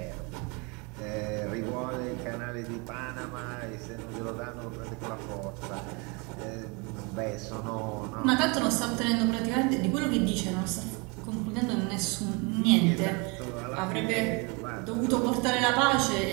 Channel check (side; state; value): left; quieter; 30.2 dB